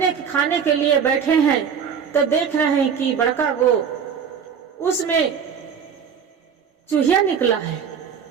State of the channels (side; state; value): left; quieter; 7.1 dB